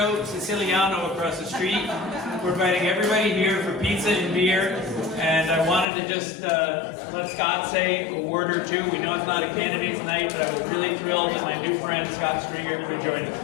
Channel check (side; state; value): right; drops out; at 5.9 s